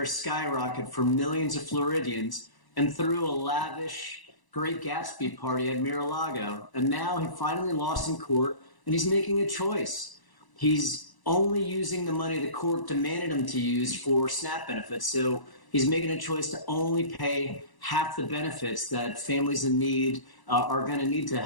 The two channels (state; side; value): late; right; 1.0 ms